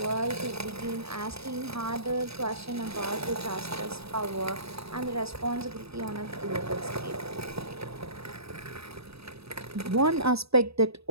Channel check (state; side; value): late; left; 0.78 ms